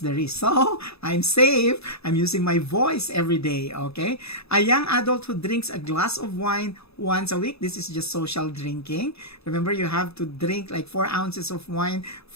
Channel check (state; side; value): late; right; 0.79 ms